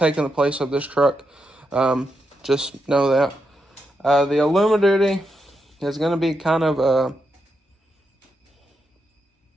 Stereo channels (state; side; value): normal; both; correlation 0.84